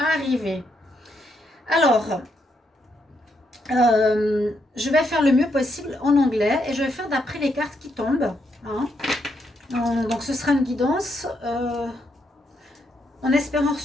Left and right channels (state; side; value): normal; both; correlation 0.78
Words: Alors, je vais faire le mieux possible en anglais et je vais faire d'après les cartes qui tombent. Hein. Donc, ce sera une guidance en espérant